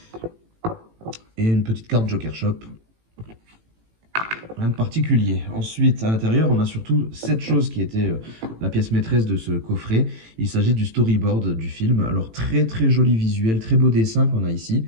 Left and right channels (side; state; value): left; late; 18 ms